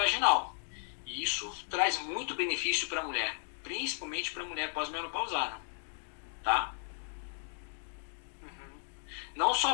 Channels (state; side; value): silent; right; digital silence